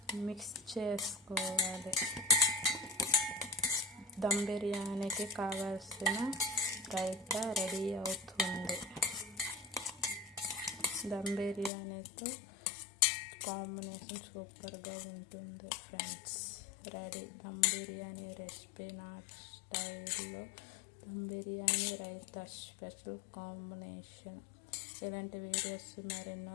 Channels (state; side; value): drops out; right; at 11.7 s